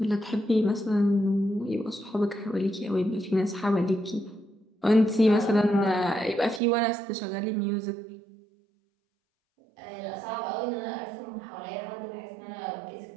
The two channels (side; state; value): left; drops out; at 6.6 s